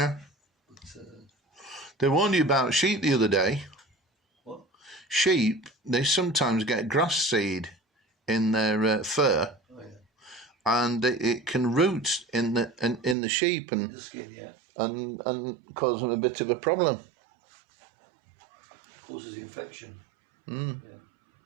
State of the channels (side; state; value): left; drops out; at 13.2 s